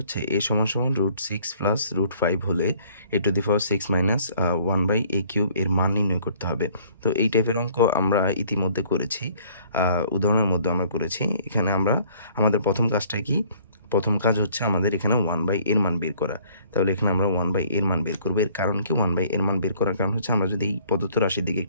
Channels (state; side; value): inverted; both; correlation -0.58